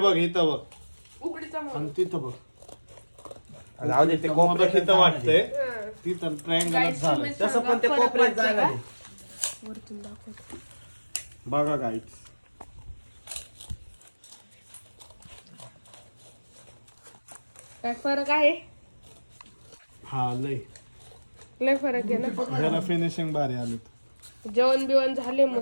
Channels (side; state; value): both; inverted; correlation -1.00